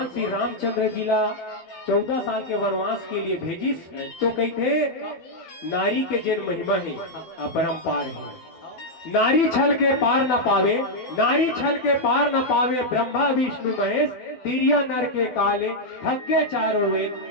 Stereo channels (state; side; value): late; right; 12 ms